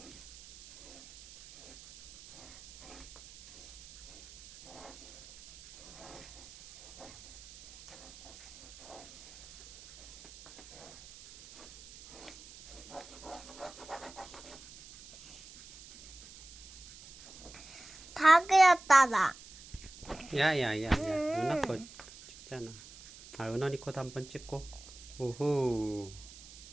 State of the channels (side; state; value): right; noise; hiss, 18 dB below the sound